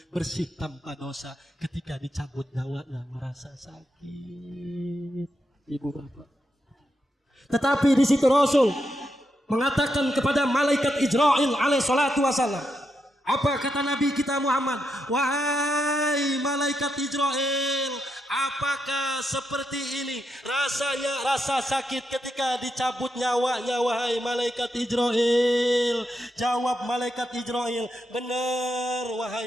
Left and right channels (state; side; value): normal; both; correlation 0.83